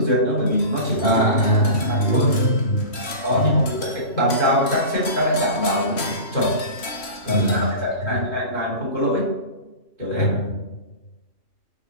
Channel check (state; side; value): late; right; 3.1 ms